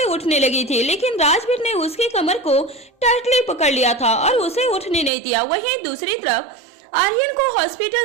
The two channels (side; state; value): left; drops out; at 5.1 s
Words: उठने लगी थी, लेकिन राजवीर ने उसकी कमर को टाइटली पकड़ लिया था और उसे उठने नहीं दिया। वहीं दूसरी तरफ आर्यन को